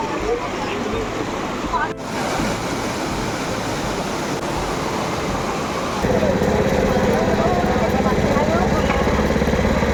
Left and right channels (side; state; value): both; identical; correlation 1.00